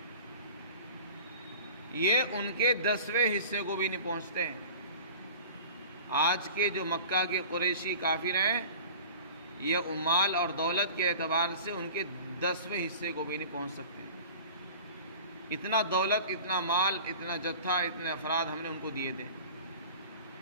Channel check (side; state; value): both; inverted; correlation -0.41